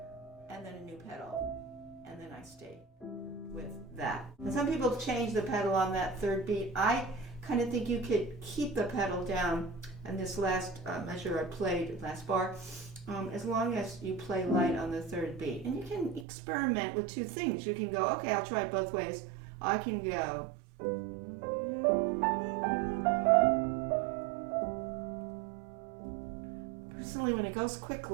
and then a new pedal. And then I stay with that. And some people change the pedal on that third beat. I kind of think you could keep the pedal down, and this last measure I played, last bar, as long as you play light on the third beat. And you can experiment with two things. You can go, okay, I'll try it both ways. I can go. Personally, when it goes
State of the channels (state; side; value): drops out; left; at 16.2 s